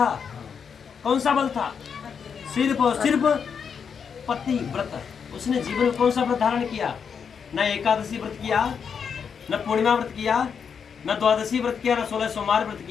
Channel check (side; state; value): right; quieter; 6.7 dB